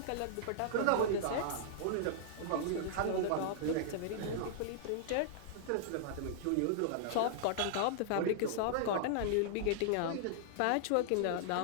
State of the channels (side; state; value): both; different; correlation -0.01